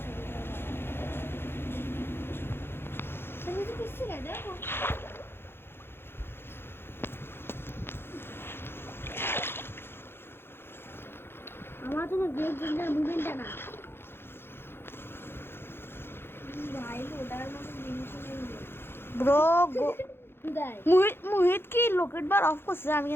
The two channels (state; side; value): late; right; 0.11 ms